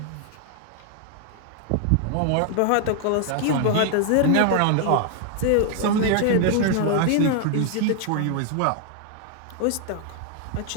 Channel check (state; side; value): different; both; correlation 0.00